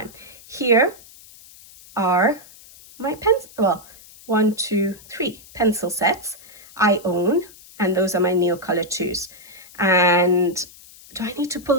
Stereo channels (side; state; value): left; noise; hiss, 22 dB below the sound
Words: Here are my pens, well, 1, 2, 3 pencil sets I own, and those are my Neocolor 2s. And do I need to pull